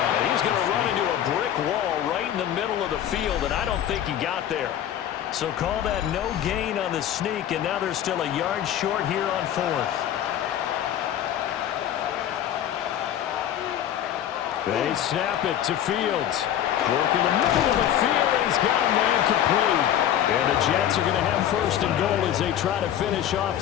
he's going to run into a brick wall right in the middle of the field, and I don't think he got there. So call that no gain on the sneak, and now they're still a yard short here on 4th. They snap it to Fields. Work in the middle of the field, and he's got a man complete. And the Jets are going to have 1st and goal as they try to finish off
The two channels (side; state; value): right; quieter; 10.8 dB